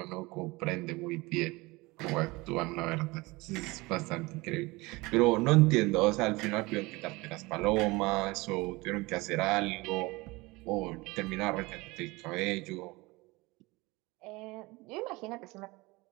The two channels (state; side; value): quieter; left; 23.0 dB